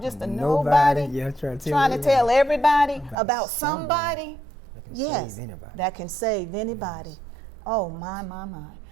just a nobody trying to tell everybody about somebody. Yes, that can save anybody. Oh, my.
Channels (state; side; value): drops out; left; at 3.2 s